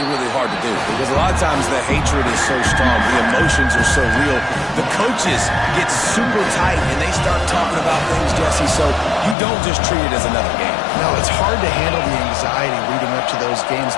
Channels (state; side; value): drops out; right; at 9.3 s